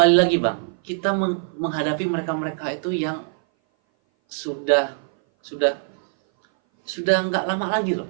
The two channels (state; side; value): silent; left; 59 dB below the other